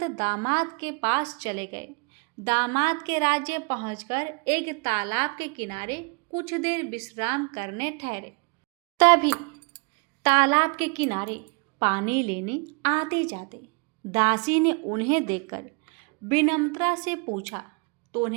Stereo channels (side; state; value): left; quieter; 34.0 dB